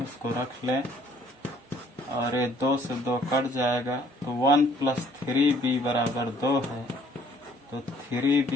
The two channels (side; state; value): both; normal; correlation 0.60